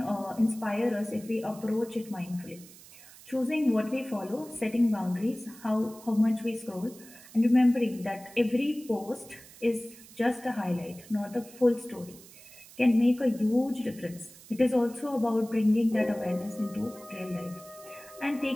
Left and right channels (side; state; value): right; noise; hiss, 20 dB below the sound